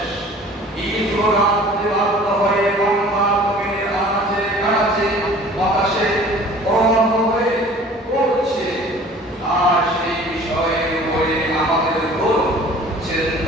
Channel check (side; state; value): both; normal; correlation 0.47